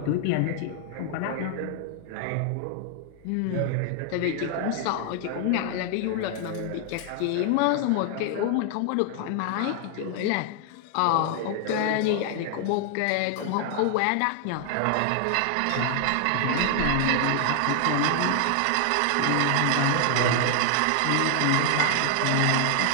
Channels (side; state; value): both; different; correlation 0.00